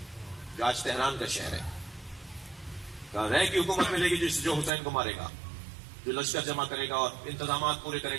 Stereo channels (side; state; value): left; drops out; at 4.7 s